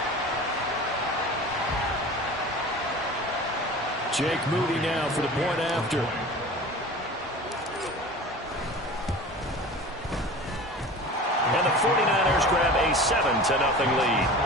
Jake Moody now for the point after. And the 49ers grab a 7-0 lead.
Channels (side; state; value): both; normal; correlation 0.37